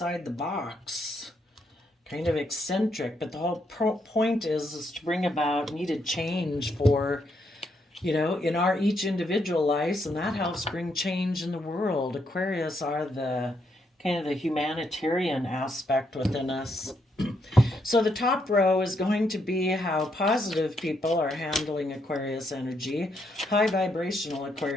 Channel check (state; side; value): normal; both; correlation 0.77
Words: the box, kind of eccentric, but the whole point is to bring about needed change for, in our each individual lives, and that helps bring change in the world. Aquarius are the kind of the humanitarian aspect within us. So the top row is going to be how positive people are handling Aquarius energy, high vibrational